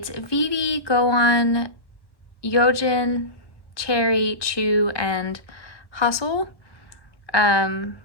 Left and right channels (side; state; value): right; late; 1.1 ms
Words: Vivi, Gohan, Yojin, Cherry, Chu, and Hustle.